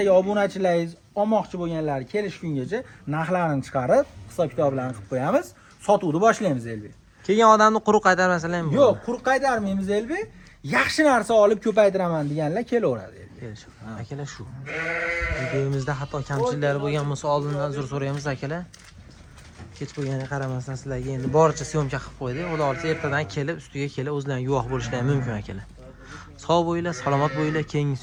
obunachilaringiz olmoqchi bo'lganlar kelish kungacha narxlarini chiqarib, hisob kitoblarni qilib qo'yamiz. Sotuvni boshlaymiz Elbek. Kelgan odamni quruq qaytarmasalar ham Yo'q, quruq qaytarmaymiz Elbek. Yaxshi narsa olib ko'paytiraman deganlar kelaveradi. Akalar shu. Videomizda hatto kamchiliklari bo'lgan bo'lsa oldindan uzr so'raymiz akalar. Kech bo'lganiga qaramasdan sizlarga endi boricha syomka qilib qo'ydik. Xudo olsa ertadan kelib, ustiga kelib o'zlaring guvoh bo'lishlari mumkin akalar. Sog' bo'linglar, salomat bo'linglar. Keyingi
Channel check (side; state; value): both; identical; correlation 1.00